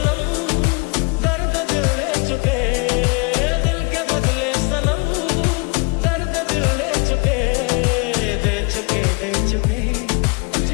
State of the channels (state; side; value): quieter; right; 31.4 dB